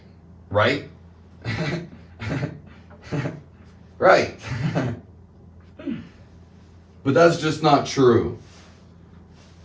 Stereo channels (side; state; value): both; identical; correlation 1.00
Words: Right? Right. But that's just not true.